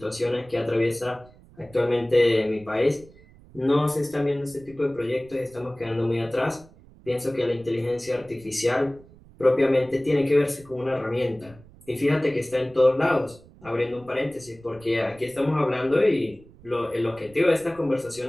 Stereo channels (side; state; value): right; noise; rumble, 24 dB below the sound